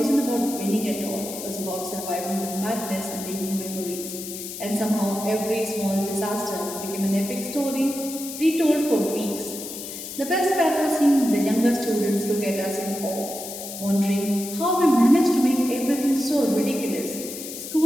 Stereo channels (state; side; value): noise; left; hiss, 9 dB below the sound